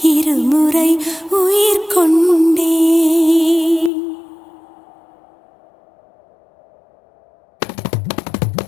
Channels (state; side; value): drops out; right; at 3.9 s